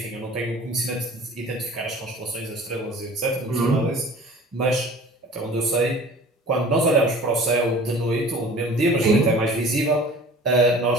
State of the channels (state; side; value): normal; both; correlation 0.44